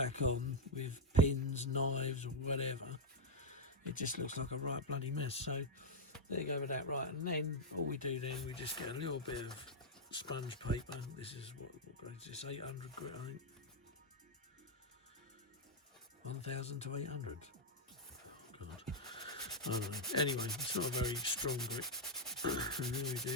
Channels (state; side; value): normal; both; correlation -0.02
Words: on with pins, knives or whatever, it just looks like a right bloody mess. So there you go with that. Right, and then all we do then, we just get a little bit of sponge paper. This is what grade is this? 800 grit, I think. 1000 to 800. Oh God, I don't know. Anyway, it's not a very strong grip. And then we